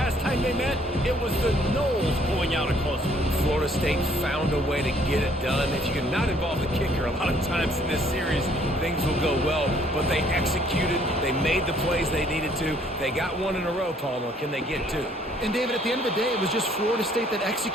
time they met, it was the Noles pulling out a close one. Florida State found a way to get it done. If you can not involve the kicker, a lot of times in this series, things will go well, but they executed, they made the plays they needed to. They got one in a row, Palmer. Can they get two? And David, at the end of the day, it was just Florida State that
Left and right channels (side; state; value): both; normal; correlation 0.62